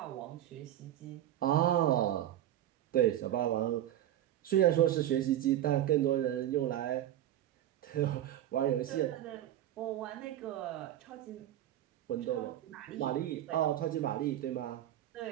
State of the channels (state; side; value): quieter; left; 12.2 dB